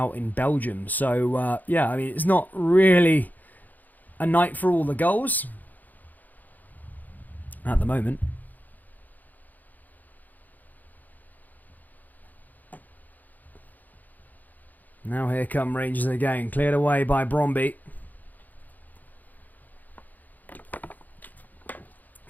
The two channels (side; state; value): right; late; 0.083 ms